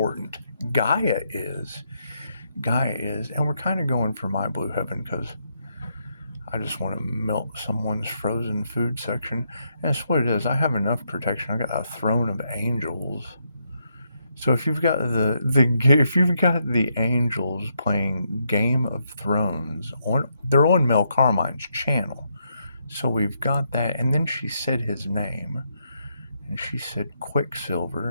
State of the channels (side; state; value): both; inverted; correlation -0.78